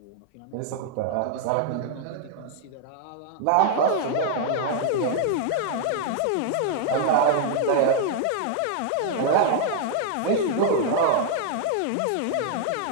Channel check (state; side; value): different; both; correlation 0.00